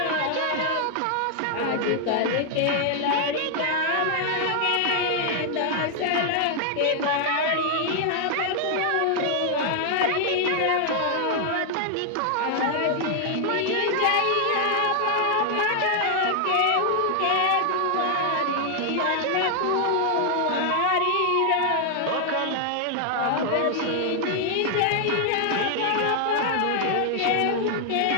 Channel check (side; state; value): both; different; correlation 0.00